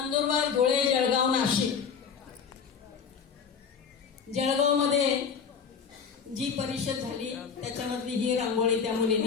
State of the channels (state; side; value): quieter; right; 6.4 dB